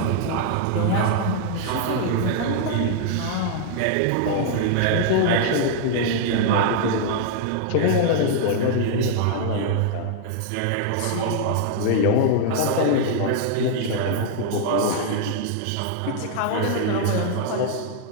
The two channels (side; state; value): both; different; correlation -0.01